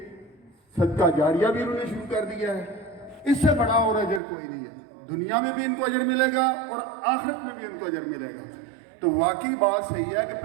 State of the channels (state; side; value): drops out; left; at 4.2 s